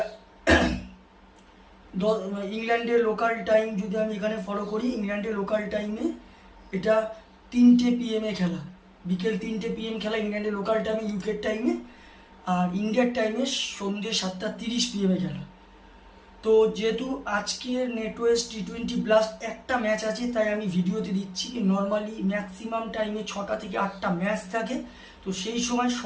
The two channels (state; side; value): identical; both; correlation 1.00